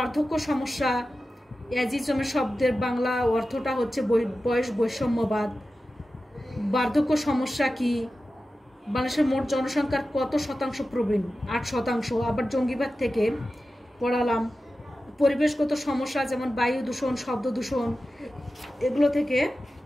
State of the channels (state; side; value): normal; both; correlation 0.94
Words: সমস্যা, এজিজমের শব্দের বাংলা অর্থটা হচ্ছে বয়স বৈষম্যবাদ। বার্ধক্য সমস্যা কি, বাংলাদেশের মোট জনসংখ্যার কত শতাংশ প্রবীণ, 8%। আবার জঙ্গিবাদ থেকে পড়ালাম। পরিবেশগত সমস্যা যেমন বায়ু দূষণ, শব্দ দূষণ, এগুলো থেকে